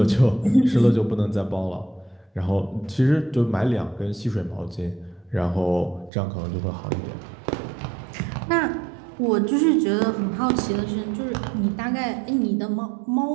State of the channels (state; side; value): drops out; left; at 6.1 s